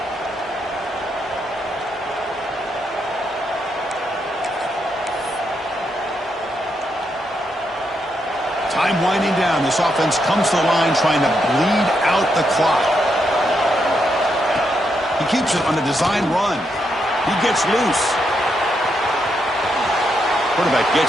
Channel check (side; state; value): both; normal; correlation 0.80